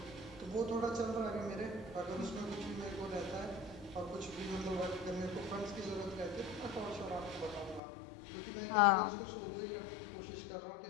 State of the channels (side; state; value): right; drops out; at 7.8 s